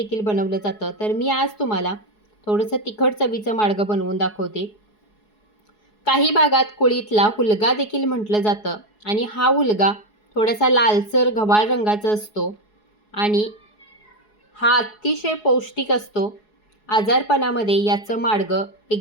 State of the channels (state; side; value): late; right; 4.7 ms